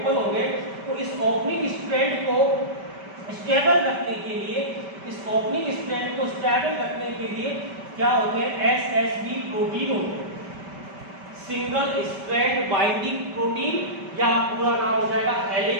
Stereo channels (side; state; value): left; late; 5.2 ms